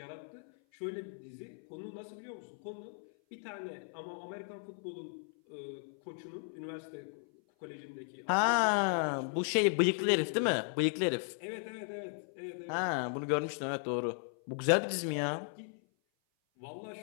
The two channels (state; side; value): silent; right; 54 dB below the other